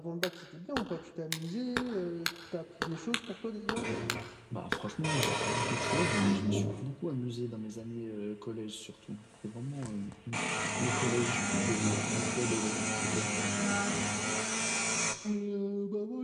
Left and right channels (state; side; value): identical; both; correlation 1.00